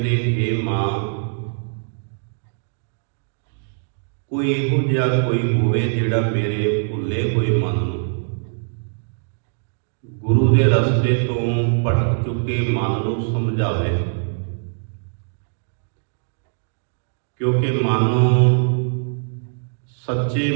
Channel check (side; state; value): left; silent; digital silence